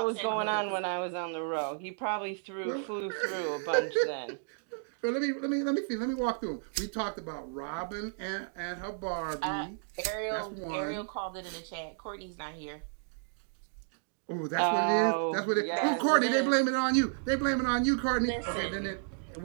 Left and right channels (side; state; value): left; silent; digital silence